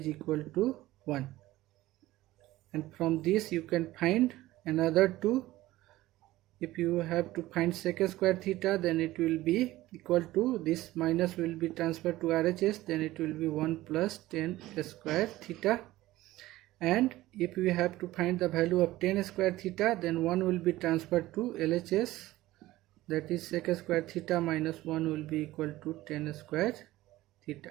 equal to 1, and from this you can find another two. If you have to find sec square theta, then it will be equal to, this minus will be transferred to RHS, then it will be 1 plus tan square theta. And if we have to find the value of tan square theta, then 1 will be transferred to LHS, that is sec square theta minus 1 will be equal to tan square theta.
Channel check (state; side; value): quieter; left; 16.8 dB